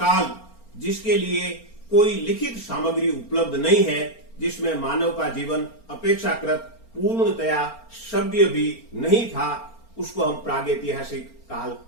जिसके लिए कोई लिखित सामग्री उपलब्ध नहीं है, जिसमें मानव का जीवन अपेक्षाकृत पूर्णतया सभ्य भी नहीं था, उसको हम प्रागैतिहासिक काल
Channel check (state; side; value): late; right; 4.4 ms